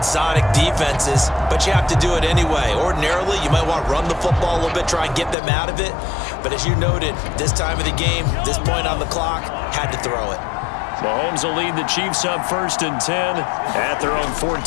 defenses, but you have to do it anyway. Ordinarily, you might want to run the football a little bit, try and get them out of it. But as you noted, this time of the game, this point on the clock, had to throw it. Mahomes will lead the Chiefs up 1st and 10 at their own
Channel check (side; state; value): right; drops out; at 5.4 s